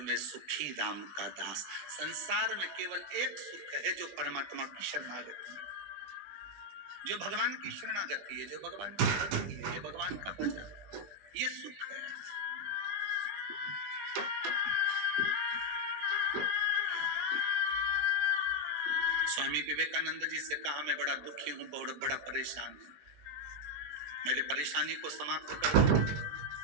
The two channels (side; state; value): left; late; 20 ms